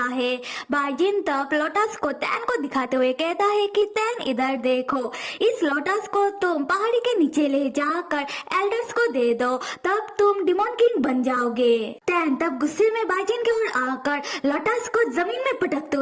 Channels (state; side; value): identical; both; correlation 1.00